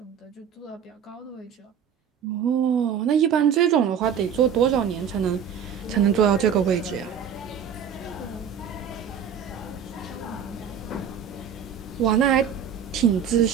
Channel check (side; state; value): left; quieter; 7.7 dB